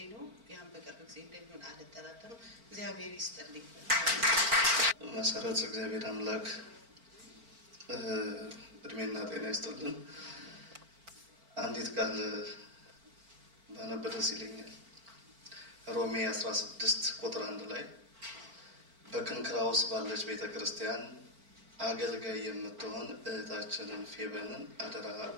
ነው። ያን በቅርብ ጊዜ እንደሚሆን አልጠራጠርም። እግዚአብሔር ይስጥልኝ። መሰረት እግዚአብሔር አምላክ እድሜና ጤና ይስጥልን። አንዲት ቃል ባነብ ደስ ይለኛል። ሮሜ 16 ቁጥር 1 ላይ በክንክራውስ ባለች ቤተክርስቲያን አገልጋይ የምትሆን እህታችንን ፌበንን አደራ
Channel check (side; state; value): left; late; 4.4 ms